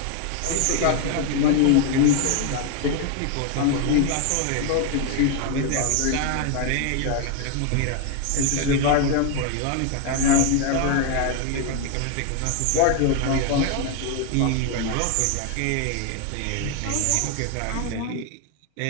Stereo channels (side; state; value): both; different; correlation 0.00